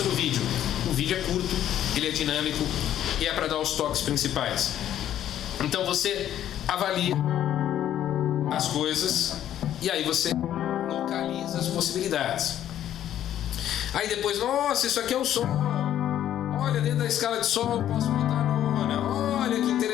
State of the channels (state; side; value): quieter; right; 11.3 dB